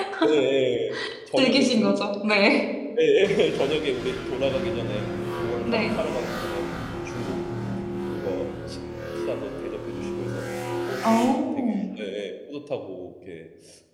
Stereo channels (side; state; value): both; identical; correlation 1.00